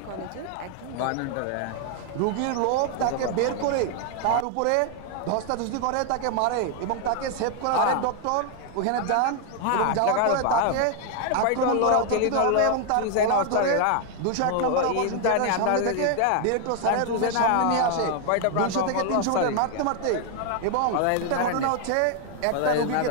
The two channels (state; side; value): different; both; correlation 0.00